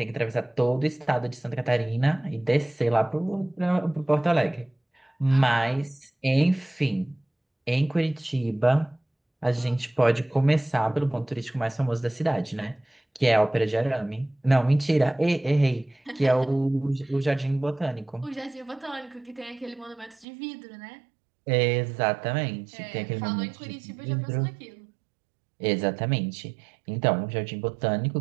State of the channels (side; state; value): left; drops out; at 20.2 s